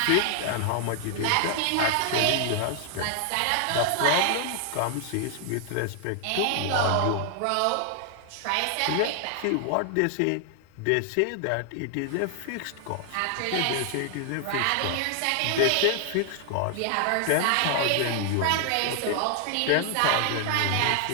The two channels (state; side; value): different; both; correlation 0.00